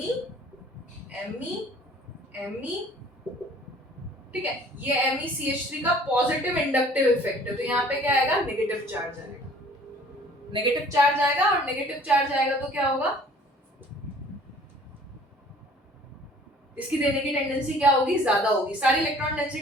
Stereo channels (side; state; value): both; normal; correlation 0.52